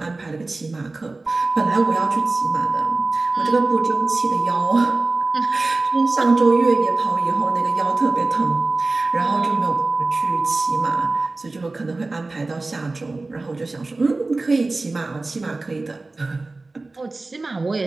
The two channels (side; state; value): left; quieter; 3.3 dB